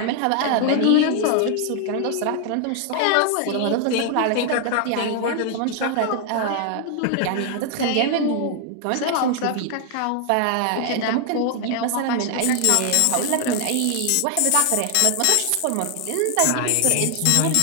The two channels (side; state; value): both; different; correlation 0.00